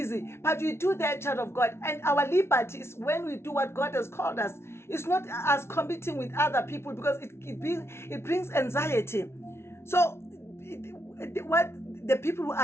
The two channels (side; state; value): right; late; 0.12 ms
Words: but we do that, child of God. And our liberty is when we do what God has called us. It's not us competing with other people, because it brings anxiety. So what the people who